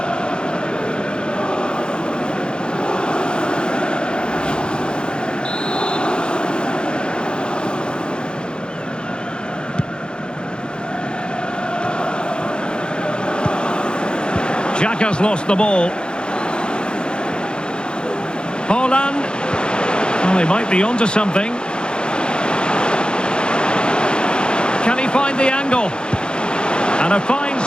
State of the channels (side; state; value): right; late; 0.050 ms